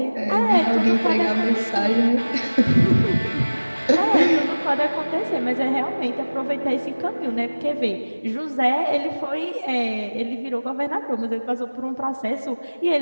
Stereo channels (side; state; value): both; inverted; correlation -1.00